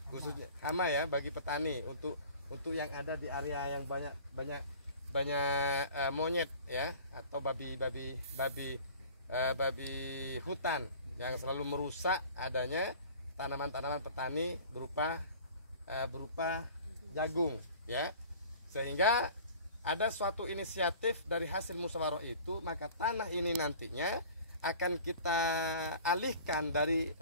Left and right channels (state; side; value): inverted; both; correlation -0.45